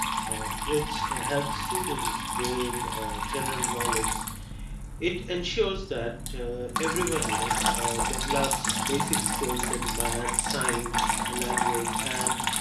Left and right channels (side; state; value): both; identical; correlation 1.00